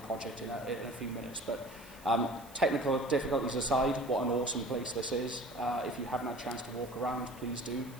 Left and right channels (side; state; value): right; noise; hiss, 21 dB below the sound